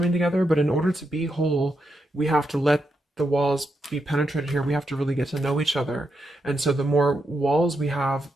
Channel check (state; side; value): normal; both; correlation 0.83